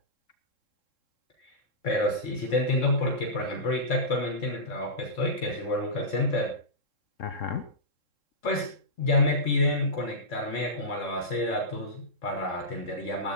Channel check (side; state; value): right; late; 3.7 ms